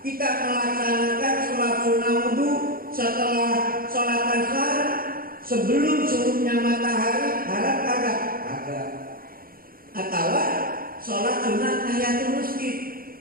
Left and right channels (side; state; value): left; late; 0.42 ms